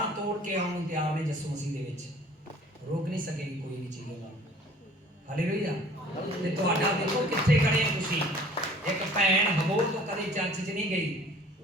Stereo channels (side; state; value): both; normal; correlation 0.51